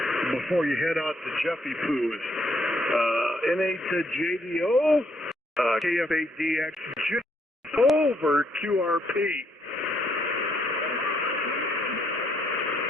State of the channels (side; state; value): both; normal; correlation 0.72